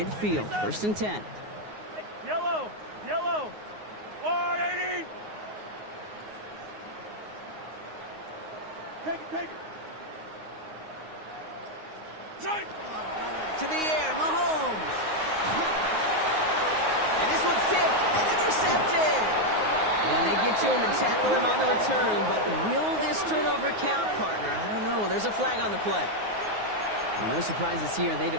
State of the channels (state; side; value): late; left; 9.5 ms